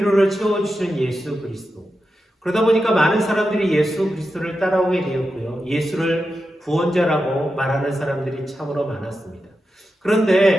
채워주시는 예수 그리스도. 그러다 보니까 많은 사람들이 예수 그리스도를 따라오게 되었고요. 예수를 구원자라고 말하는 사람들이 참으로 많았습니다.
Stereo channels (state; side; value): normal; both; correlation 0.89